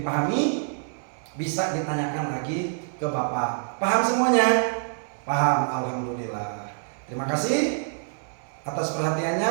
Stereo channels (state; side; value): silent; left; 61 dB below the other